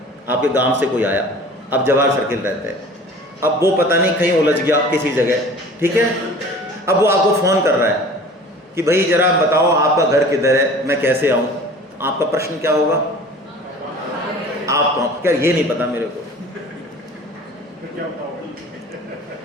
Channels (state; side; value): normal; both; correlation 0.44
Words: आपके गांव से कोई आया, अब जवाहर सर्किल रहते हैं, अब वो पता नहीं कहीं उलझ गया किसी जगह, ठीक है। अब वो आपको फ़ोन कर रहा है कि भाई ज़रा बताओ आपका घर किधर है, मैं कैसे आऊँ। आपका प्रश्न क्या होगा, आप क्या ये नहीं पता मेरे को,